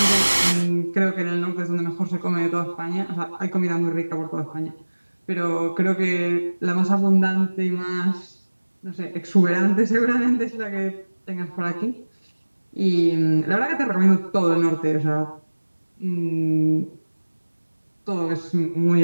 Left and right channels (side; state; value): both; inverted; correlation -1.00